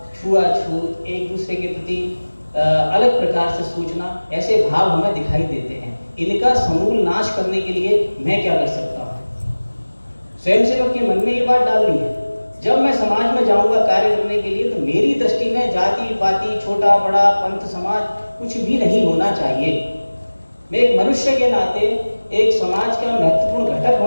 छुआछूत, एक दूसरे के प्रति अलग प्रकार से सोचना, ऐसे भाव हमें दिखाई देते हैं। इनका समूल नाश करने के लिए मैं क्या कर सकता हूँ? स्वयंसेवक के मन में ये बात डालनी है, जब मैं समाज में जाऊंगा कार्य करने के लिए तो मेरी दृष्टि में जाति पाति, छोटा बड़ा, पंथ समाज कुछ भी नहीं होना चाहिए। मैं एक मनुष्य के नाते, एक समाज का महत्वपूर्ण घटक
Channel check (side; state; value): both; inverted; correlation -1.00